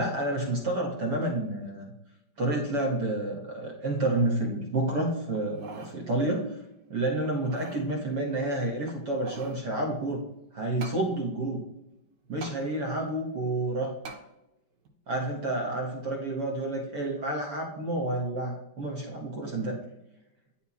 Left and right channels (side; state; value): left; late; 5.1 ms